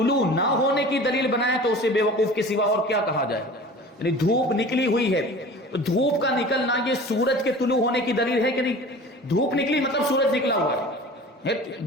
نہ ہونے کی دلیل بنائے، تو اسے بے وقوف کے سوا اور کیا کہا جائے. یعنی دھوپ نکلی ہوئی ہے، دھوپ کا نکلنا یہ سورج کے طلوع ہونے کی دلیل ہے کہ نہیں؟ دھوپ نکلی مطلب سورج نکلا ہوا ہے.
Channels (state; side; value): normal; both; correlation 0.40